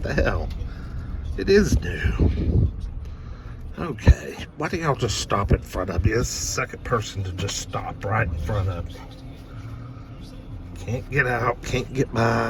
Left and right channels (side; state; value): both; identical; correlation 1.00